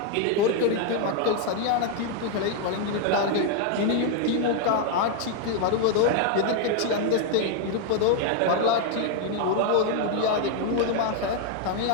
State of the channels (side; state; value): both; different; correlation 0.00